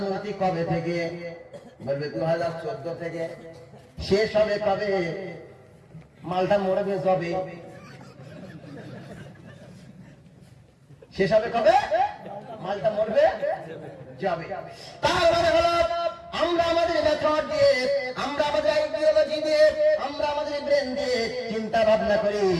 কবে থেকে, বলবে 2014 থেকে। শেষ হবে কবে, মালটা মরবে যবে। শেষ হবে কবে, মালটা মরবে যাবে। তার মানে হলো আমরা আমাদের মেথড দিয়ে, আমরা আমাদের আইডিওলজি দিয়ে, আমরা আমাদের ব্রেন দিয়ে চিন্তা ভাবনা করি।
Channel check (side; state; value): both; identical; correlation 1.00